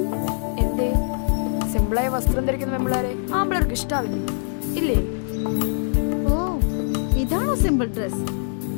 എന്തേ സിമ്പിളായ വസ്ത്രം ധരിക്കുന്ന പെമ്പിളാരെ ആമ്പിളർക്ക് ഇഷ്ടാവില്ലേ? ഇല്ലേ? ഓ, ഇതാണോ സിമ്പിൾ ഡ്രസ്?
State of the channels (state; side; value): silent; right; digital silence